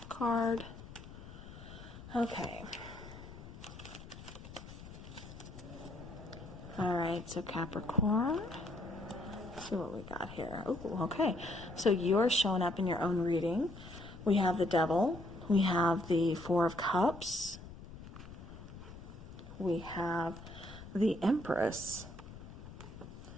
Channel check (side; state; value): left; noise; rumble, 14 dB below the sound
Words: card. Okay. All right, so Capricorn. Let's see what we got here. Oh, okay. So you're showing up in your own reading. We have the Devil. We have the 4 of Cups. We have the Empress.